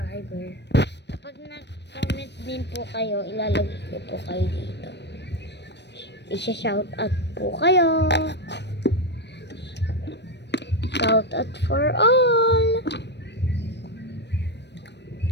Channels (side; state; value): right; late; 0.50 ms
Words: Kapag nag-comment din po kayo, ilalagay ko po kayo dito. Isha-shout out po kayo. Shout out for all.